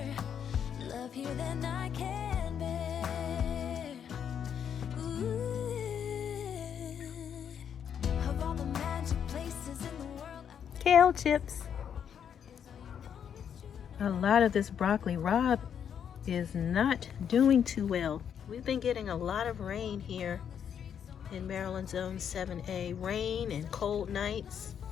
love here than I can bear. Ooh. Of all the magic places in the world, Kale chips. A lot of this broccoli rabe is not doing too well. We've been getting a lot of rain here in Maryland Zone 7A. Rain and cold nights.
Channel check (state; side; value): quieter; right; 8.3 dB